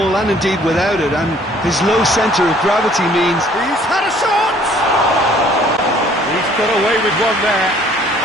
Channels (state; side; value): normal; both; correlation 0.58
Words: and indeed without it, and his low centre of gravity means... He's had a shot! He's got away with one there.